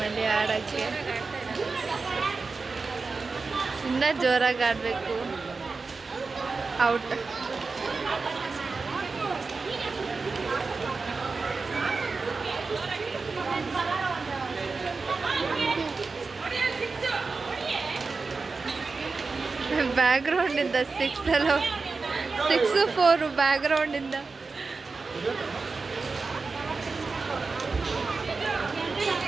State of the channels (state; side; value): quieter; left; 4.2 dB